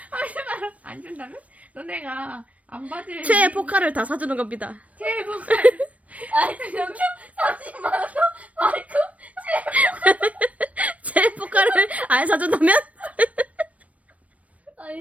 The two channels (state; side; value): late; left; 0.067 ms